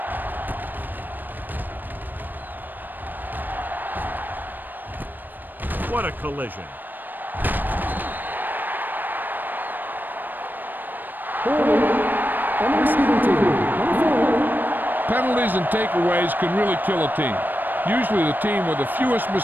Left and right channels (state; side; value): late; left; 0.090 ms